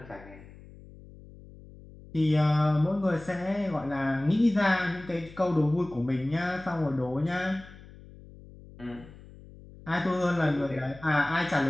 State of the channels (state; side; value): noise; left; hum, 19 dB below the sound